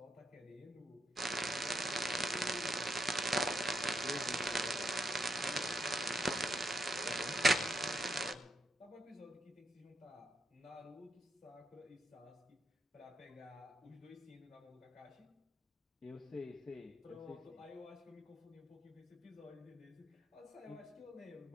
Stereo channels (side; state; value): both; normal; correlation 0.80